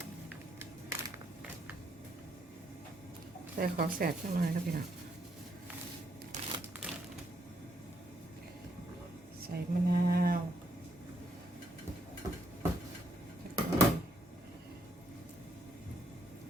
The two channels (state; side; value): normal; both; correlation 0.73